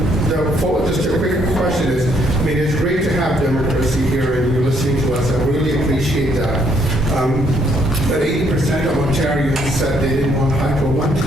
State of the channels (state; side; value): normal; both; correlation 0.69